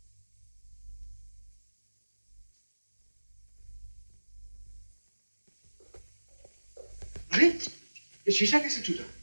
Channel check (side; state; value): both; inverted; correlation -1.00